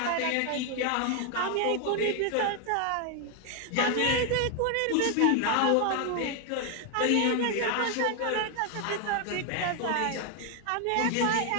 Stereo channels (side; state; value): both; different; correlation 0.01